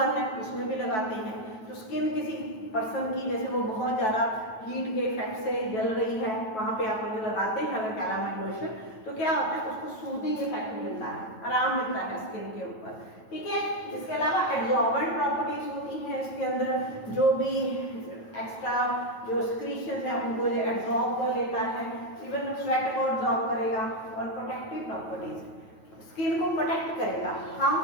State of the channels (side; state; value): right; late; 9.2 ms